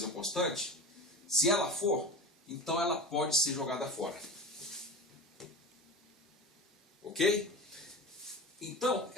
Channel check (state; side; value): normal; both; correlation 0.29